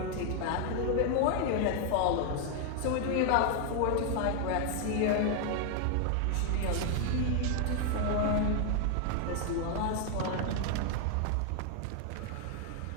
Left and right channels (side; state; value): both; different; correlation 0.00